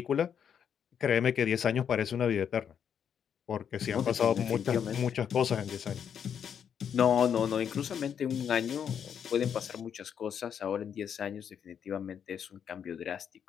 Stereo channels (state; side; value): quieter; right; 8.1 dB